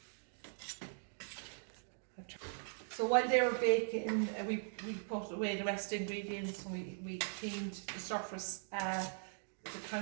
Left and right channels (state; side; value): silent; left; digital silence